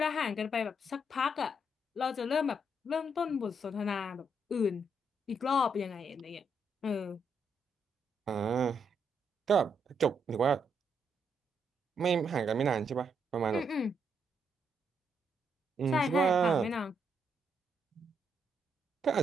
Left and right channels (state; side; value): normal; both; correlation 0.77